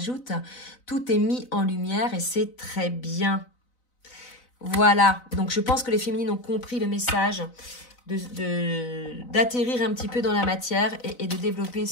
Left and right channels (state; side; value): late; right; 4.0 ms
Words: Tout est mis en lumière et c'est très bien. Voilà, donc je pense que les féminines ont compris le message d'atterrir un petit peu dans la matière et de développer